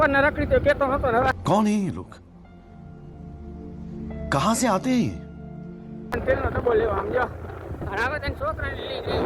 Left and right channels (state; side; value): identical; both; correlation 1.00